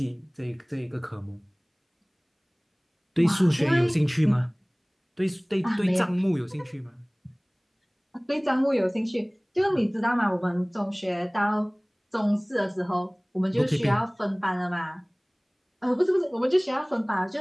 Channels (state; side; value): identical; both; correlation 1.00